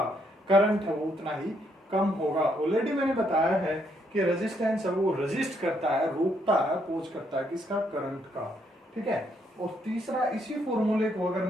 करंट है वो उतना ही कम होगा। ऑलरेडी मैंने बताया है कि रेजिस्टेंस है वो रेजिस्ट करता है, रोकता है, अपोज करता है किसका, करंट का, ठीक है। और तीसरा, इसी फॉर्मूले को अगर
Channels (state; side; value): normal; both; correlation 0.73